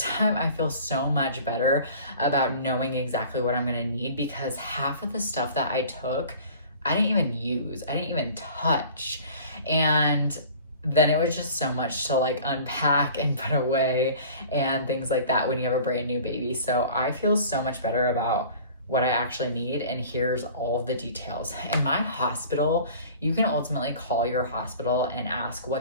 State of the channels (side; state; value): both; inverted; correlation -0.45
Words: time I feel so much better about knowing exactly what I'm gonna need, because half of the stuff that I took, I didn't even use, I didn't even touch. And then it was just so much to like unpack and put away and things like that when you have a brand new baby. So I feel so much better about what I actually need, and here's all the details. In my hospital, you can ultimately call your hospital and ask